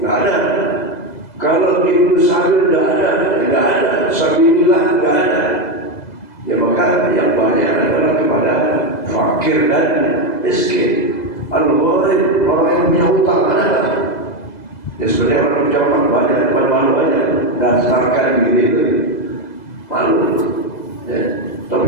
nggak ada. Kalau ibnu sabil nggak ada, sabilillah nggak ada. Ya maka yang banyak adalah kepada fakir dan miskin. Al-gharim, orang yang punya utang ada. Ya sebenarnya orang punya utang banyak, malu aja daftarkan gitu, malu. Ya.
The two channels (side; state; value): right; late; 2.0 ms